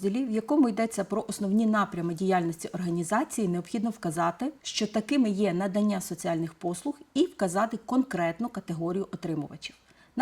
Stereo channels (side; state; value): both; identical; correlation 1.00